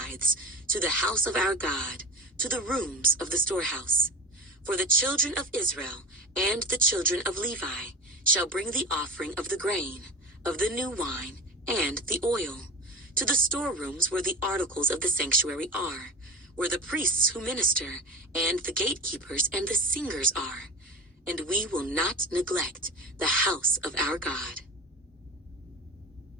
to the house of our God, to the rooms of the storehouse. For the children of Israel and the children of Levi shall bring the offering of the grain, of the new wine, and the oil, to the storerooms where the articles of the sanctuary are, where the priests who minister, and the gatekeepers and the singers are. And we will not neglect the house of our God.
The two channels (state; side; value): normal; both; correlation 0.28